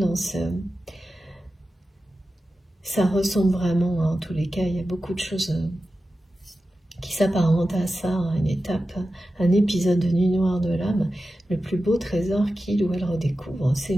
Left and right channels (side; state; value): both; normal; correlation 0.93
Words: ça ressemble vraiment, hein, en tous les cas, il y a beaucoup de choses qui s'apparentent à ça, hein, une étape, un épisode de Nuit Noire de l'âme. Le plus beau trésor qu'il ou elle redécouvre, c'est